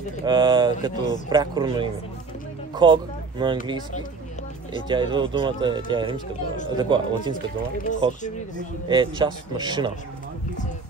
като прякорно име. Ког на английски, и тя идва от думата, тя е римска дума, такова, латинска дума, ког, е част от машина,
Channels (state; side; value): quieter; left; 4.5 dB